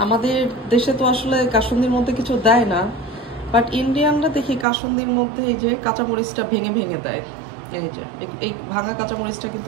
আমাদের দেশে তো আসলে কাসুন্দির মধ্যে কিছু দেয় না, বাট ইন্ডিয়ানরা দেখি কাসুন্দির মধ্যে এই যে কাঁচামরিচটা ভেঙে ভেঙে দেয়। এই যে এই ভাঙা কাঁচামরিচটা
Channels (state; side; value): drops out; left; at 4.7 s